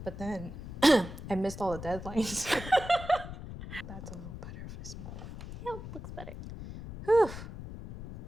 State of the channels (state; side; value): noise; left; rumble, 10 dB below the sound